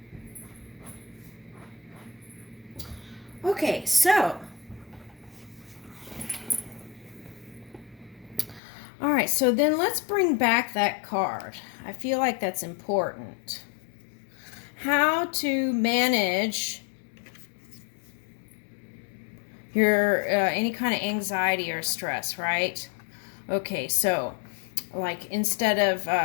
Okay, so, all right, so then let's bring back that card. I feel like that's important. How to manage your any kind of anxiety or stress, right? Okay, so like instead of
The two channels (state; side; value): drops out; right; at 8.6 s